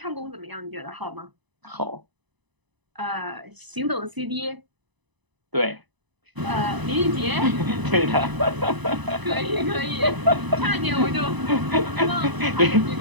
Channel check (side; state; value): left; late; 1.0 ms